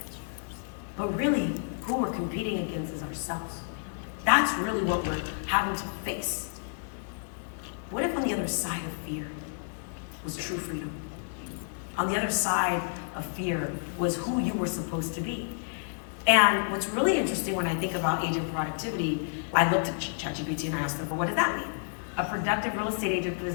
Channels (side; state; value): right; silent; digital silence